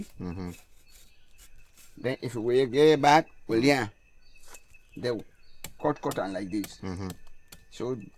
Then if we get back, well, yeah, they cut on like this. So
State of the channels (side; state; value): both; identical; correlation 1.00